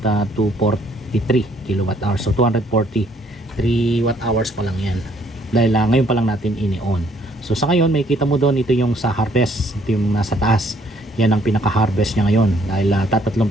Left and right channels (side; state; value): both; normal; correlation 0.64